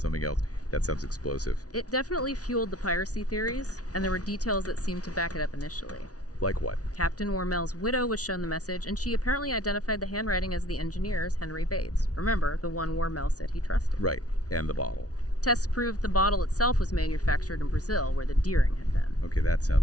else. That sounds explosive. It definitely fueled the piracy theories, and there were details that seemed to back it up initially. Like what? Captain Wormel's widow was shown the message, and she apparently identified the handwriting as the engineer's, Henry Bates. Remember, the one Wormel said he trusted. Right, and the bottle. Tests proved the bottle itself was manufactured in Brazil, where the Deering had been. Okay, that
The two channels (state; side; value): late; right; 0.68 ms